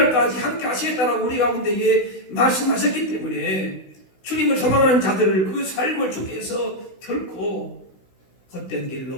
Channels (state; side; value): late; right; 16 ms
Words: 함께 하시겠다라고 우리 가운데에 말씀하셨기 때문에 주님을 소망하는 자들을 그 삶을 주께서 결코 헛된